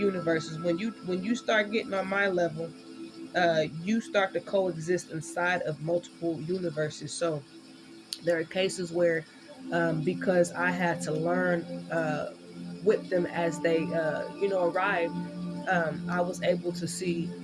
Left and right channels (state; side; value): identical; both; correlation 1.00